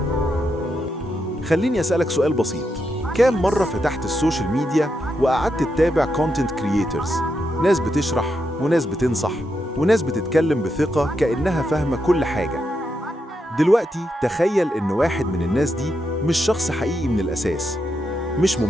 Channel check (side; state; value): both; normal; correlation 0.84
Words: خليني أسألك سؤال بسيط. كام مرة فتحت السوشيال ميديا وقعدت تتابع كونتنت كرييترز، ناس بتشرح وناس بتنصح وناس بتتكلم بثقة كأنها فاهمة كل حاجة؟ دلوقتي تخيل إن واحد من الناس دي مش شخص حقيقي من الأساس، مش